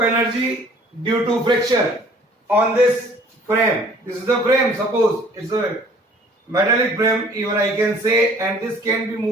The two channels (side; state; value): both; normal; correlation 0.54